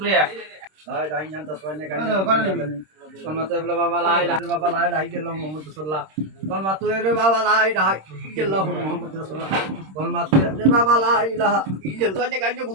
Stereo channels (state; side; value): late; left; 26 ms